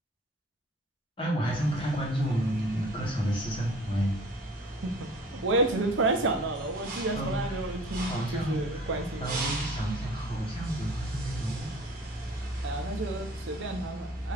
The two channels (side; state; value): both; normal; correlation 0.47